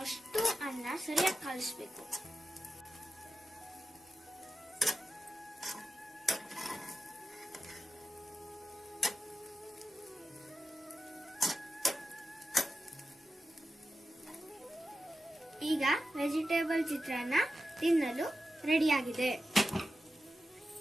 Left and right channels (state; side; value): normal; both; correlation 0.91